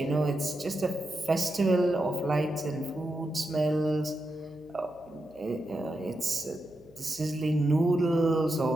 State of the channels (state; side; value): noise; right; hum, 28 dB below the sound